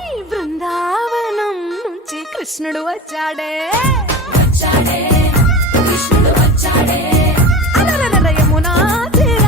బృందావనం నుంచి కృష్ణుడు వచ్చాడే కృష్ణుడు వచ్చాడే అలరల యమునా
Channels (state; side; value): normal; both; correlation 0.30